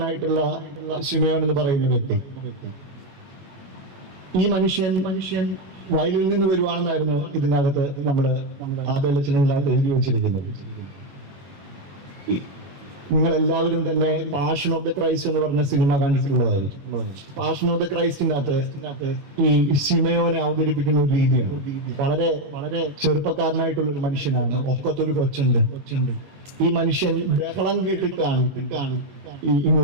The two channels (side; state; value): left; late; 21 ms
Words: ശിമയോൻ എന്ന് പറയുന്ന വ്യക്തി. ഈ മനുഷ്യൻ വയലിൽ നിന്ന് വരുവാണെന്നായിരുന്നു ഇതിനകത്ത് നമ്മുടെ ആബേലച്ചനകത്ത് എഴുതി വെച്ചിരിക്കുന്നത്. നിങ്ങൾ എല്ലാവരും തന്നെ പാഷൻ ഓഫ് ദ ക്രൈസ്റ്റ് എന്ന് പറഞ്ഞ സിനിമ കണ്ടിട്ടുള്ളതായിരിക്കും. പാഷൻ ഓഫ് ദ ക്രൈസ്റ്റിനകത്ത് ഈ ശിമയോനെ അവതരിപ്പിക്കുന്ന ഒരു രീതിയാണ്. വളരെ ചെറുപ്പക്കാരനായിട്ടുള്ള ഒരു മനുഷ്യനാണ്. ഒക്കത്തൊരു കൊച്ചുണ്ട്. ഈ മനുഷ്യൻ ബഹളം കേട്ടിട്ടാണ്